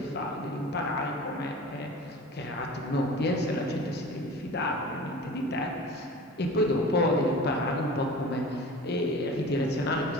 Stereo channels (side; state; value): both; normal; correlation 0.38